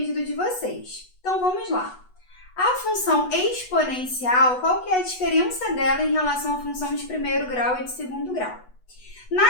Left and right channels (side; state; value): right; late; 8.1 ms